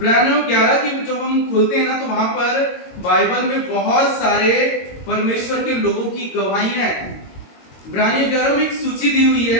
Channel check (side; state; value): right; late; 22 ms